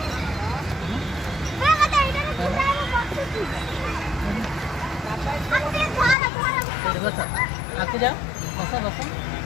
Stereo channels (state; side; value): drops out; right; at 6.2 s